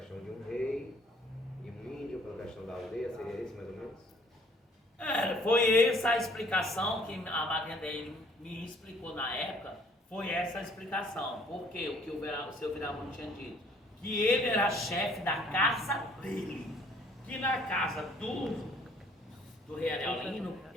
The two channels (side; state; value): both; normal; correlation 0.59